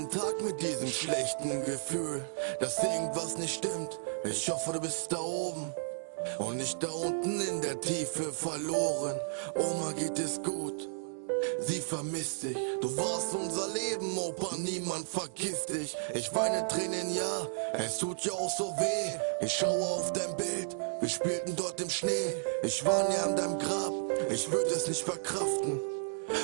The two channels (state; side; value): silent; left; 55 dB below the other